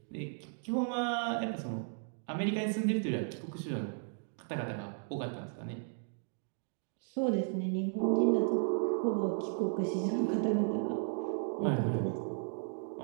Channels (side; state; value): left; silent; 54 dB below the other